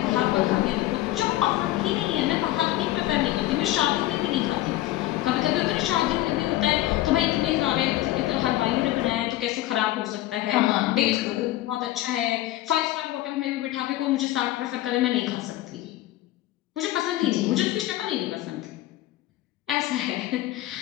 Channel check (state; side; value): quieter; right; 15.5 dB